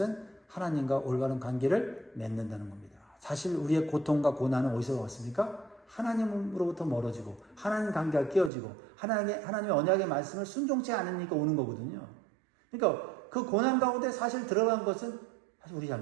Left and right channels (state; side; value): drops out; left; at 8.5 s